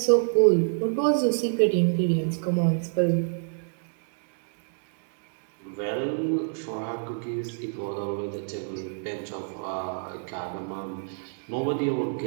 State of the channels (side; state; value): left; silent; digital silence